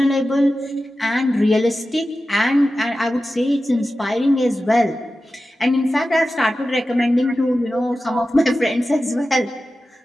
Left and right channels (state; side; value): normal; both; correlation 0.93